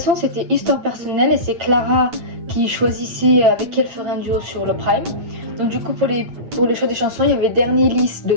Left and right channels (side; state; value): left; late; 8.8 ms